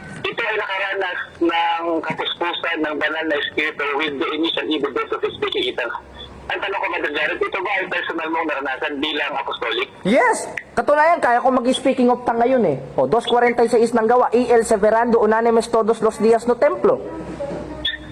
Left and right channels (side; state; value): both; identical; correlation 1.00